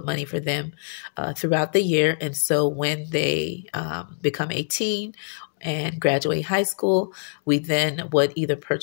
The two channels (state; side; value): silent; right; digital silence